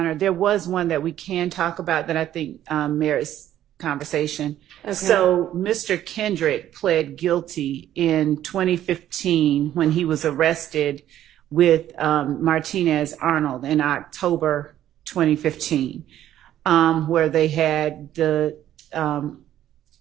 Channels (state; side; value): quieter; left; 12.0 dB